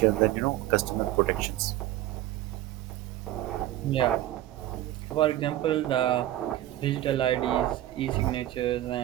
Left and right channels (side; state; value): left; quieter; 14.3 dB